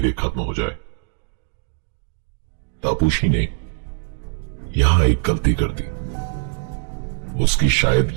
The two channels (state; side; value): silent; left; 64 dB below the other